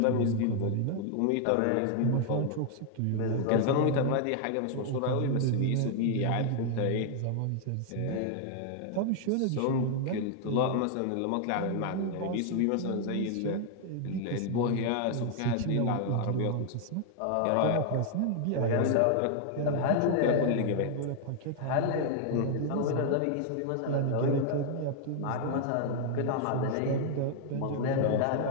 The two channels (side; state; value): both; different; correlation 0.00